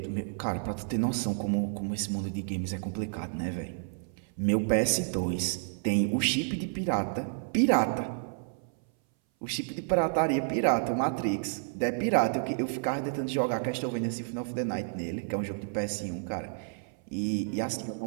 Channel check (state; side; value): silent; left; 58 dB below the other